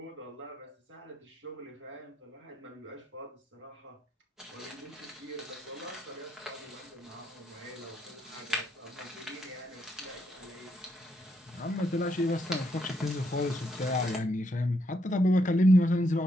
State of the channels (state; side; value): normal; both; correlation 0.77